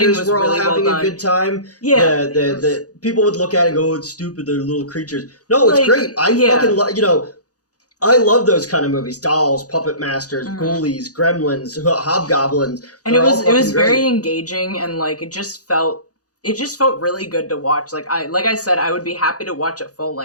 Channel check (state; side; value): late; right; 0.67 ms